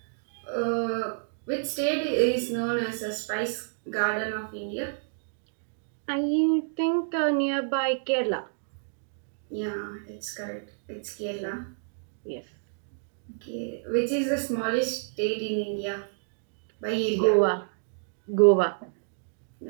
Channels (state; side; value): silent; left; digital silence